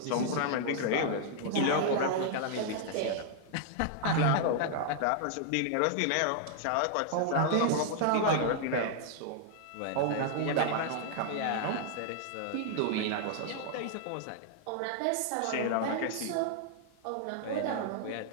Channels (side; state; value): both; different; correlation 0.00